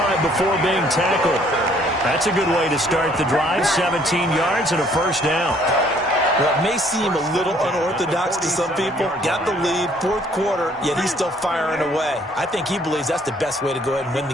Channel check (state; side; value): normal; both; correlation 0.62